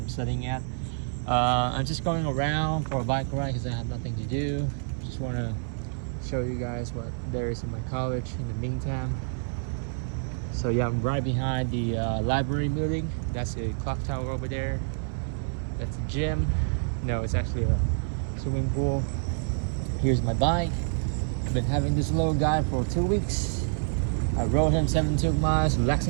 studying at. I'm just going around for a bike ride because I have nothing to do. Just want to show you guys what there is in my college in the meantime. So yeah, I'm right behind the library building. That's a clock tower over there. That's a gym. No, it's actually a swimming pool. Here's my bike. I've been having this little guy for 2 weeks. I rode him 72 miles to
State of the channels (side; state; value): left; silent; 58 dB below the other